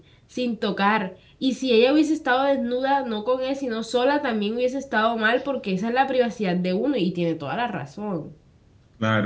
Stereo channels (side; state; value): both; identical; correlation 1.00